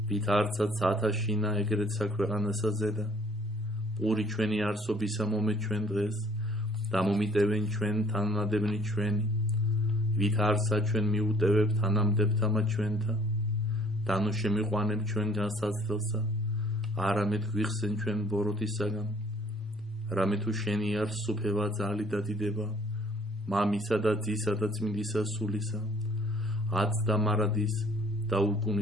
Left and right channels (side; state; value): both; normal; correlation 0.58